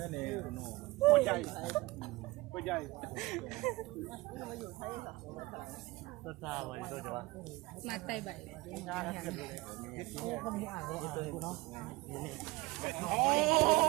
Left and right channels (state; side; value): quieter; left; 21.1 dB